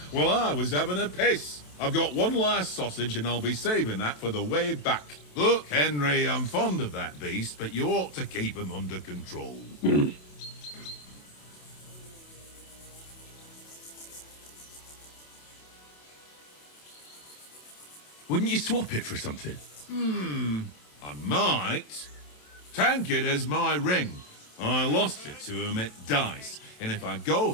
while I was having a piss. I've got one last sausage and I'll be saving that for the way back. Look, Henry, I'm fond of that beast, but you ought to keep him under control. Wouldn't you swap it for something? I might. Tankard has my ring. I lost it to him at dice, and if I go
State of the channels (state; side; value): late; right; 27 ms